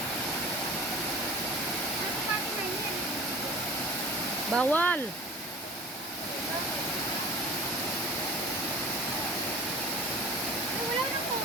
Bawal. Ay, wala nang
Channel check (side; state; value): both; normal; correlation 0.41